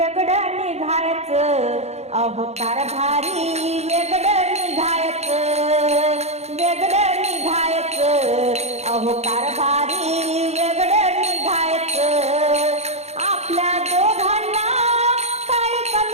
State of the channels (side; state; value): left; late; 0.31 ms